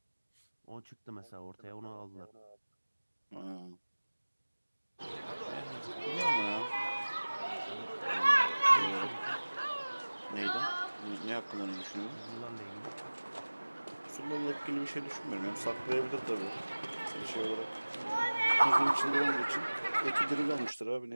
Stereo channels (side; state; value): both; inverted; correlation -1.00